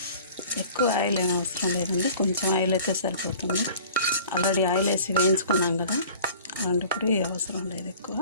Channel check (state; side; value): inverted; both; correlation -0.46